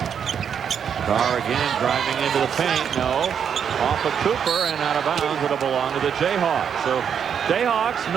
Carr again driving into the paint. No. Off of Cooper and out of bounds. It'll belong to the Jayhawks. So Jayhawks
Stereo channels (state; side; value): quieter; left; 7.7 dB